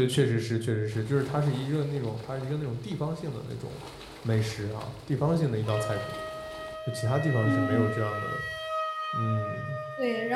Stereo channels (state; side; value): identical; both; correlation 1.00